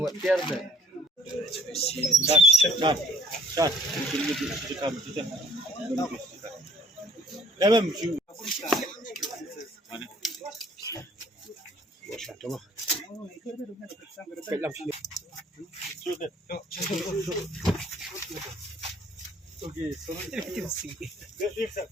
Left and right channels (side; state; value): both; normal; correlation 0.57